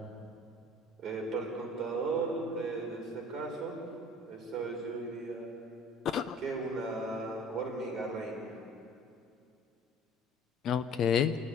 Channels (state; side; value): normal; both; correlation 0.48